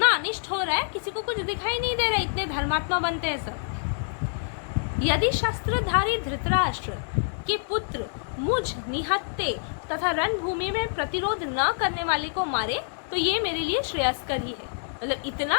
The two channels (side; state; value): right; silent; digital silence